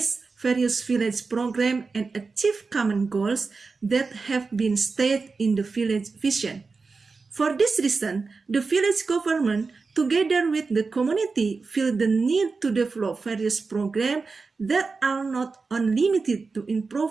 various village programs and achieve common goals that have been stated in the village vision. For this reason, the village government, together with the community, feel the need to develop various programs that are not unlimited to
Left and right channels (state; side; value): quieter; left; 4.4 dB